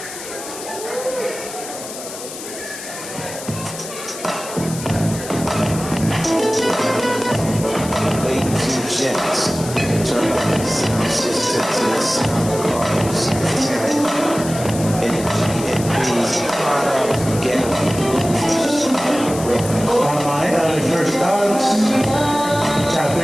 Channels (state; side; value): noise; left; hiss, 11 dB below the sound